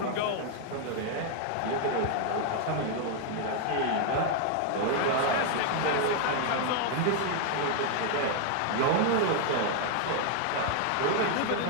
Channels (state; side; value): different; both; correlation 0.00